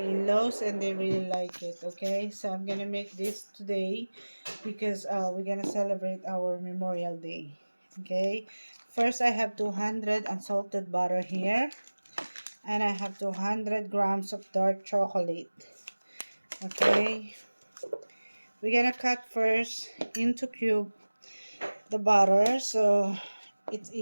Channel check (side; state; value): both; inverted; correlation -1.00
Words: in-laws and they really like it, okay? So I'm gonna make this today because we're gonna celebrate our Memorial Day, okay? First, I have 200 unsalted butter here, and I have 200 grams of dark chocolate, okay? We're gonna cut first into cube the butter so it's